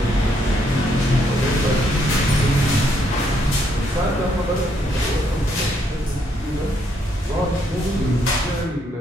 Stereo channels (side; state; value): both; normal; correlation 0.73